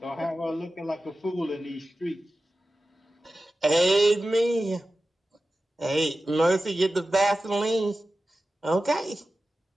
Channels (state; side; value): normal; both; correlation 0.94